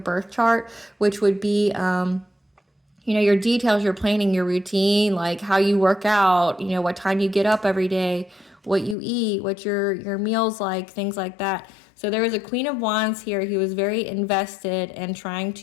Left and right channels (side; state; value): right; drops out; at 9.0 s